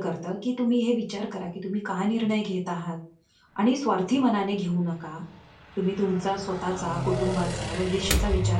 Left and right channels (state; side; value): identical; both; correlation 1.00